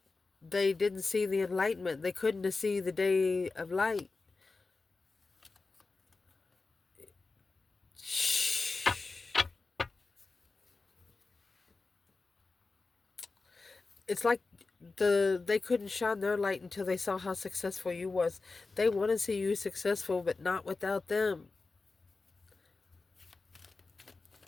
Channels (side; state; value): right; quieter; 3.9 dB